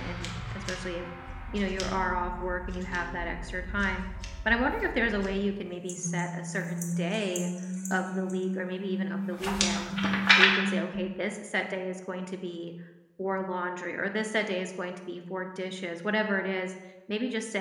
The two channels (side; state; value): both; identical; correlation 1.00